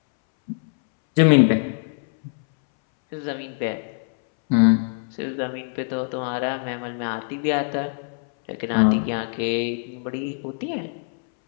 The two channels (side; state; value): right; silent; 63 dB below the other